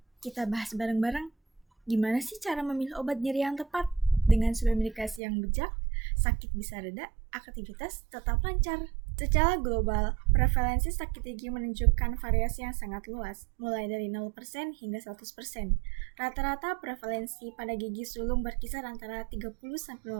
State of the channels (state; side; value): drops out; left; at 5.2 s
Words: kita bahas bareng-bareng gimana sih cara memilih obat nyeri yang tepat. Dengan sebuah medikasi yang bijak, sakit bisa reda, aktivitas tetap lancar. Secara global, prevalensi sakit gigi menunjukkan variasi yang sangat luas, mulai dari 0% hingga 100%. Rata-rata prevalensi pada gigi sulung berkisar antara